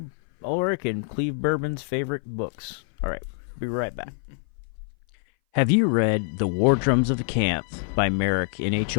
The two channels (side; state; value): right; silent; 59 dB below the other